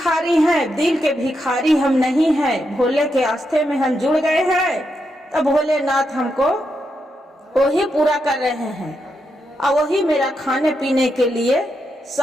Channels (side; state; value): both; normal; correlation 0.83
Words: हैं, दिल के भिखारी हम नहीं हैं। भोले के आस्थे में हम जुड़ गए हैं तो भोलेनाथ हमको वही पूरा कर रहे हैं और वही मेरा खाने पीने के लिए